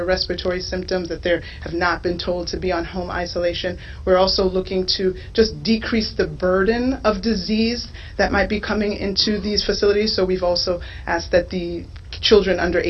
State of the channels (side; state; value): both; identical; correlation 1.00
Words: respiratory symptoms, that they have not been told to be on home isolation. We're also looking to just decrease the burden of disease that might be coming into these facilities. So we've also asked that the children under